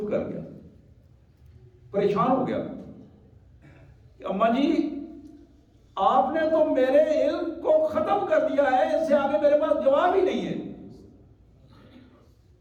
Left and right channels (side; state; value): both; identical; correlation 1.00